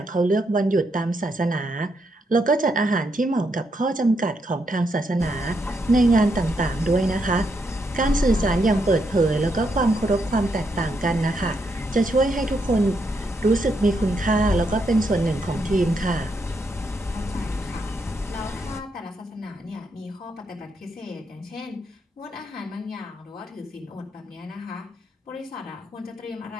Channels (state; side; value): normal; both; correlation 0.79